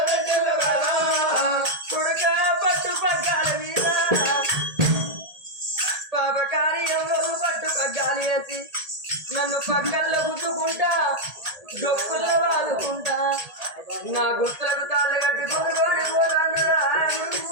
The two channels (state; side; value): late; left; 1.8 ms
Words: కొడుక పట్టు పగ్గాల మీద పాపకారి ఎవరు పట్టు పగ్గాలు వేసి నన్ను పక్కల్లో గుద్దుకుంటా డొక్కుల్లో వాదుకుంటా నా గుర్తులకు తాళ్ళు కట్టి కొనుగోలు పోరాను